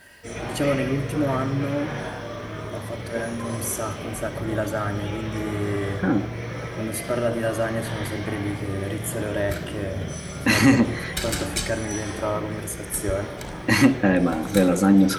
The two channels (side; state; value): both; identical; correlation 1.00